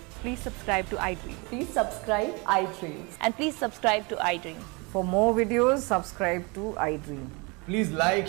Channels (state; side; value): quieter; left; 28.8 dB